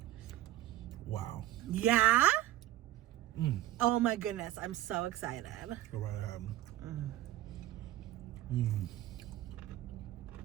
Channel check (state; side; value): quieter; left; 14.8 dB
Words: Wow. Yeah? Oh my goodness. I'm so excited. Go right ahead.